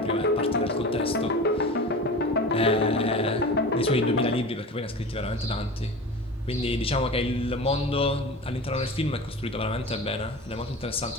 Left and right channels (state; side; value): normal; both; correlation 0.33